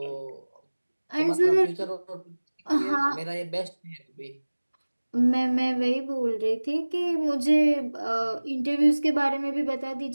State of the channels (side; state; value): both; inverted; correlation -1.00